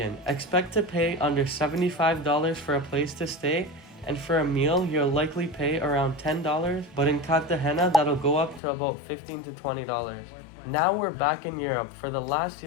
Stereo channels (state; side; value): drops out; right; at 8.6 s